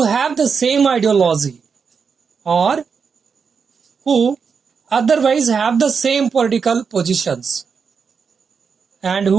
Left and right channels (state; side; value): quieter; left; 5.9 dB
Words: have the same ideology or who otherwise have the same political positions and